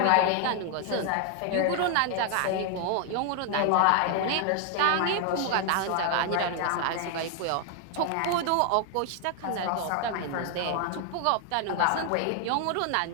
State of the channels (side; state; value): both; different; correlation 0.00